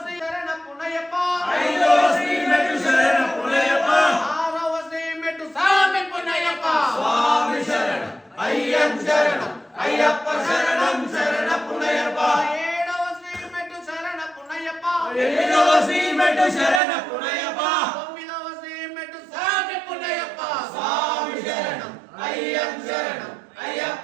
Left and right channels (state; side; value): drops out; left; at 16.8 s